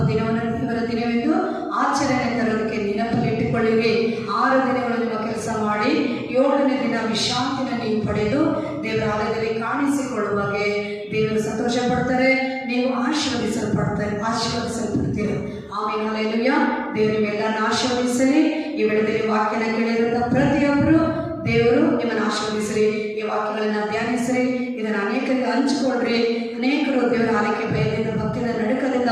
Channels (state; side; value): identical; both; correlation 1.00